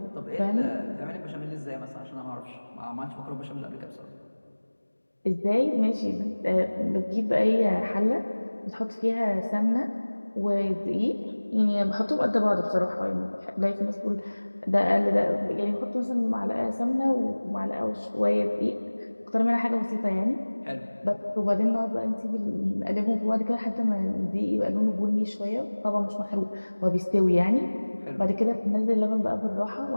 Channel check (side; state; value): both; inverted; correlation -1.00